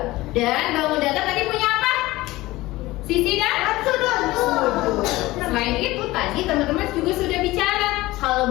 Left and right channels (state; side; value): quieter; right; 18.7 dB